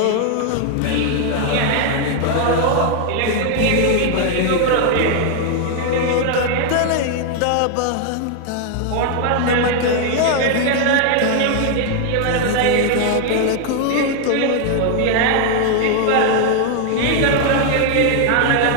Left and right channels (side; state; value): both; different; correlation 0.00